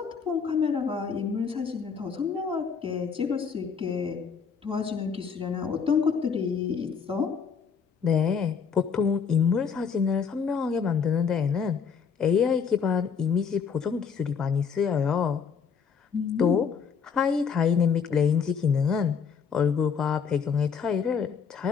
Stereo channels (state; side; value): quieter; right; 6.3 dB